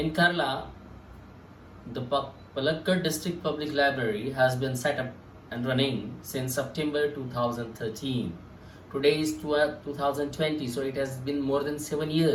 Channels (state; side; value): identical; both; correlation 1.00